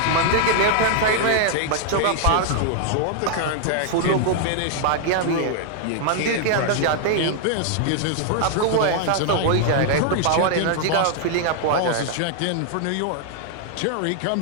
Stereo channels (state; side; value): different; both; correlation 0.00